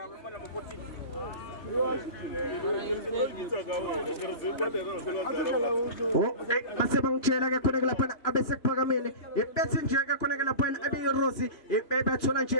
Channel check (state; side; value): late; right; 3.0 ms